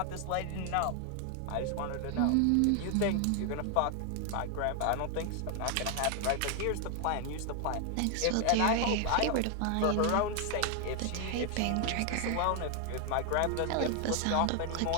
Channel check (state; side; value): different; both; correlation 0.00